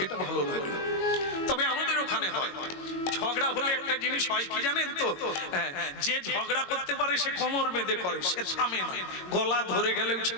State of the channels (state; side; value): late; right; 22 ms